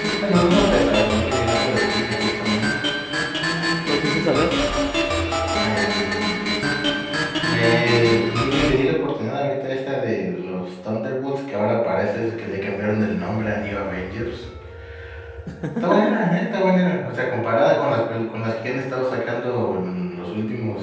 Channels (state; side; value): identical; both; correlation 1.00